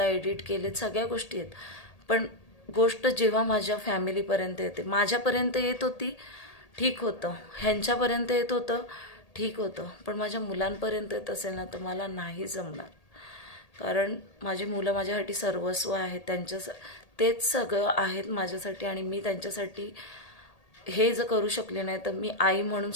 एडिट केलेत, सगळ्या गोष्टी आहेत. पण गोष्ट जेव्हा माझ्या फॅमिलीपर्यंत येते, माझ्यापर्यंत येत होती ठीक होतं, ह्यांच्यापर्यंत येत होतं ठीक होतं, पण माझ्या मुलांपर्यंत येत असेल ना तर मला नाही जमणार. कारण माझी मुलं माझ्यासाठी सर्वस्व आहेत. तेच सगळं आहेत माझ्यासाठी. आणि मी त्यांच्यासाठी हे जर करू शकले नाही तर मी आई म्हणून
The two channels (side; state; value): right; late; 1.8 ms